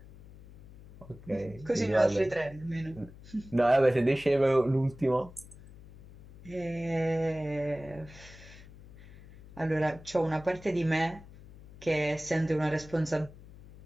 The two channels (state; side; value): noise; left; hum, 19 dB below the sound